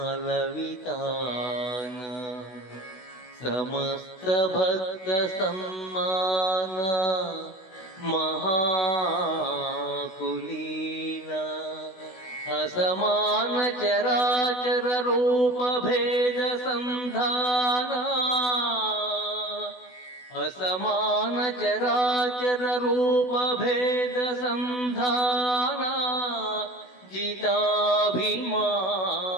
వితాన సమస్త భక్త సమ్మాన మహాకులీన అసమాన చరాచర రూప భేద సంధాన असमान चराचर रूप भेद संधान जिताभिमान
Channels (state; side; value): late; right; 16 ms